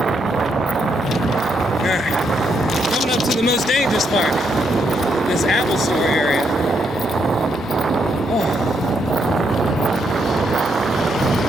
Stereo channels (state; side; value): noise; left; hum, 26 dB below the sound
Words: Coming up to the most dangerous part, this Apple Store area.